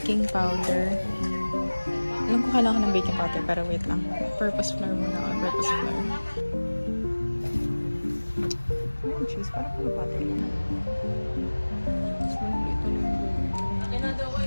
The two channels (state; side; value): inverted; both; correlation -1.00